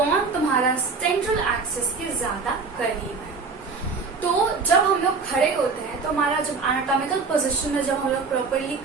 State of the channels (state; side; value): quieter; left; 4.6 dB